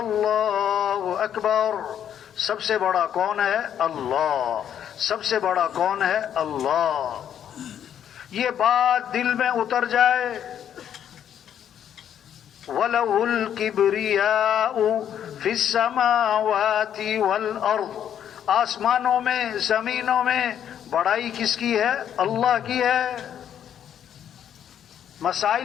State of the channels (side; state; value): right; quieter; 9.5 dB